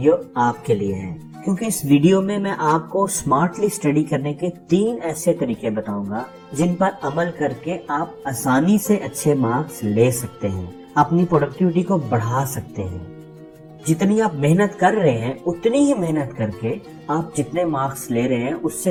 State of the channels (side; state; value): both; identical; correlation 1.00